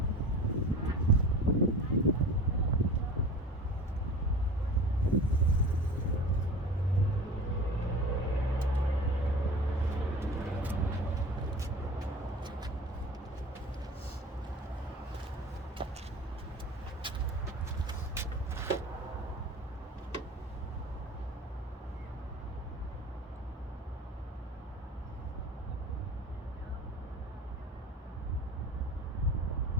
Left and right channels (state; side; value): normal; both; correlation 0.38